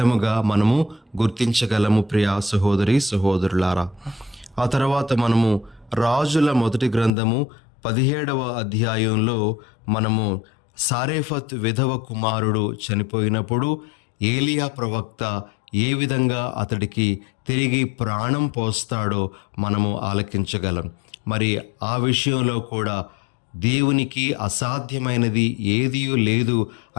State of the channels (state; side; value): drops out; right; at 7.1 s